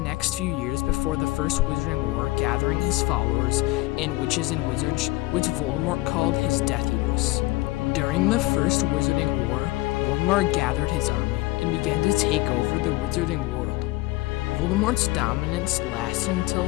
few years before the First Wizarding War gathering his followers and witches and wizards, which Voldemort called his Death Eaters. During the First Wizarding War, Voldemort gathered his army and began to take over the Wizarding world. Voldemort's dominance lasted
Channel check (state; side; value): quieter; right; 20.0 dB